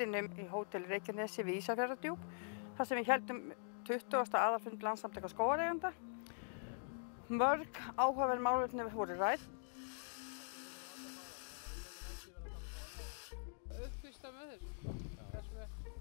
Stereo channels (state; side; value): silent; right; digital silence